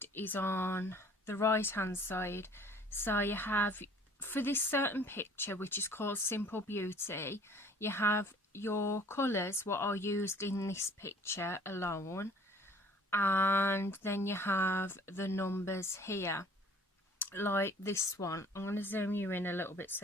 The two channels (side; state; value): both; normal; correlation 0.53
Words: is on the right hand side. So you have, for this certain picture, which is called Simple Beauty, you have your colours, what are used in this picture alone, and then you have the numbers here, like this one. I'm going to zoom you in a little bit so